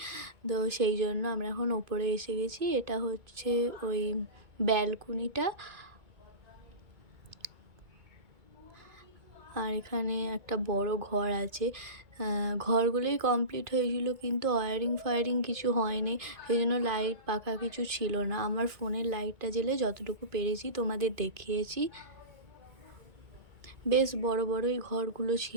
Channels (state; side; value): late; left; 2.3 ms